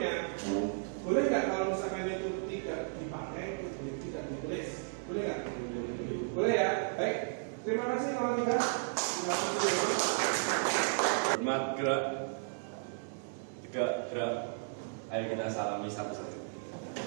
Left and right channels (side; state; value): left; silent; digital silence